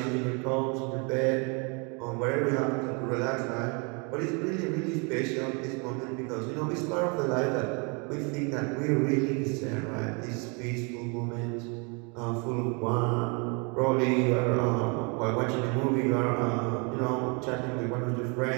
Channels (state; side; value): quieter; left; 32.9 dB